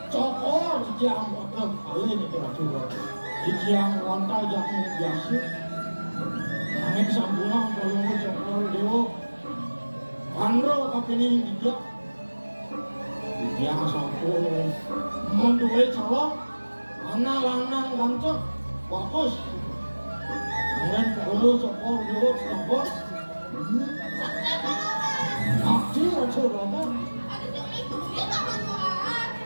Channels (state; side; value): inverted; both; correlation -1.00